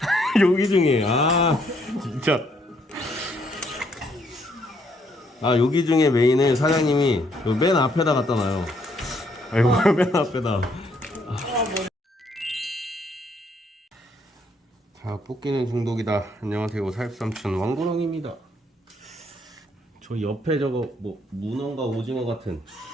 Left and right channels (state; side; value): normal; both; correlation 0.70